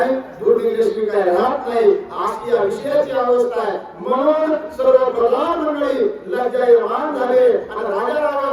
दूध इंग्लिश काय राहत नाही अशी या विषयाची अवस्था आहे म्हणून सर्व प्रधान मंडळी लज्जायमान झाले आणि राजा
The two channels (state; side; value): identical; both; correlation 1.00